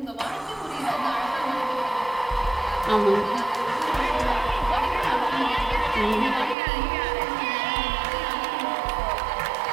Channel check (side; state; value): left; drops out; at 6.6 s